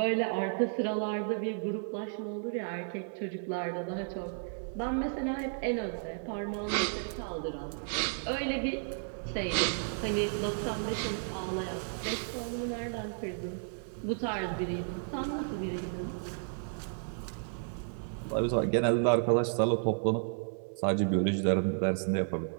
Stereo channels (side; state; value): left; silent; 56 dB below the other